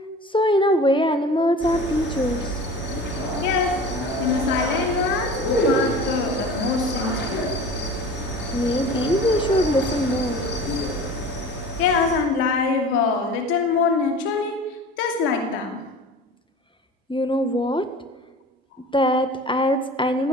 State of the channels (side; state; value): both; normal; correlation 0.39